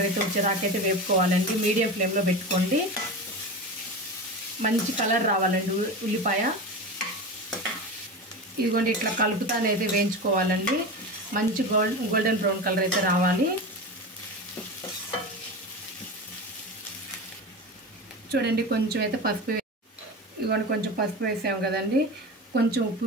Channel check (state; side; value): normal; both; correlation 0.26